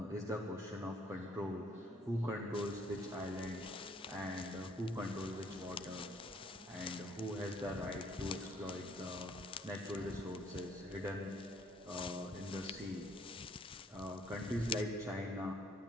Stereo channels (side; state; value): both; normal; correlation 0.63